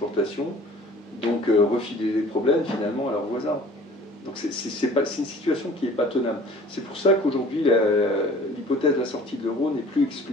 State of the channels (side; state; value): both; normal; correlation 0.48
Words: donc refilaient les problèmes finalement à leurs voisins. Donc c'est une situation qui n'est pas tenable. C'est pour ça qu'aujourd'hui l'hypothèse de la sortie de l'euro n'est plus